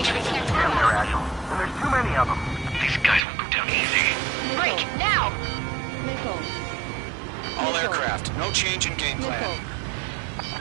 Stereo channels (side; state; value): left; drops out; at 3.2 s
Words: Damn, they're agile. And there's too many of them. These guys won't go down easy. Break! Now! All aircraft, no change in game plan.